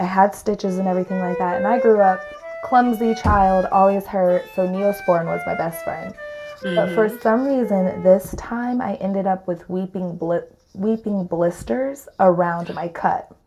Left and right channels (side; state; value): both; identical; correlation 1.00